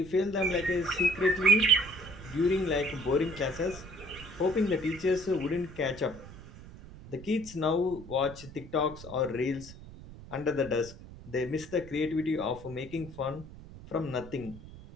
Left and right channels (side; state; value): right; noise; rumble, 16 dB below the sound